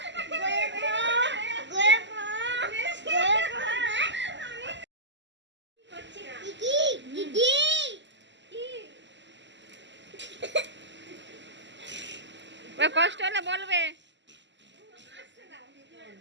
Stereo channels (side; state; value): left; late; 0.53 ms